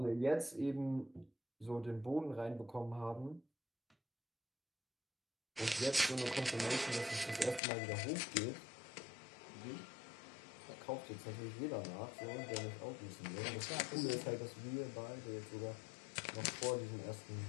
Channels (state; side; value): drops out; right; at 7.6 s